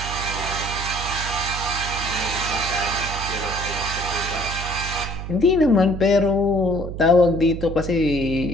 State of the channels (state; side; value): noise; right; hum, 7 dB below the sound